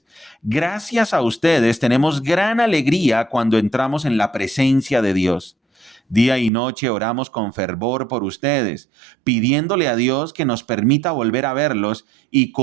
Gracias a ustedes tenemos gran alegría cuando entramos en la presencia de Dios. Día y noche oramos con fervor por ustedes, pidiéndole a Dios que nos permita volver a verlos y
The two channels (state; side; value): drops out; left; at 6.5 s